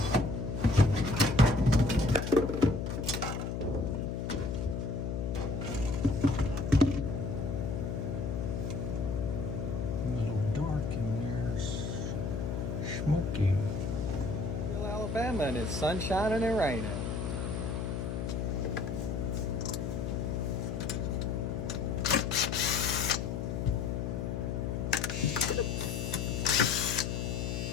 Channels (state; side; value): noise; left; hum, 2 dB below the sound